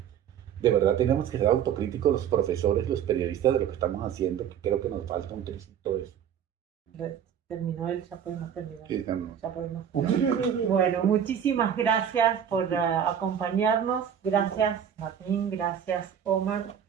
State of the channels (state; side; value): quieter; left; 8.8 dB